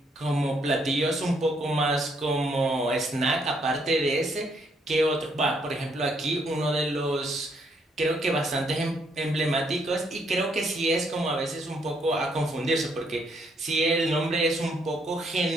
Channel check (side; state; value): both; normal; correlation 0.71